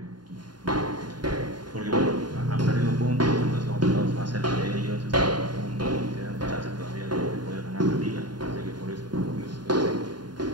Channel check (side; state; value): left; late; 0.70 ms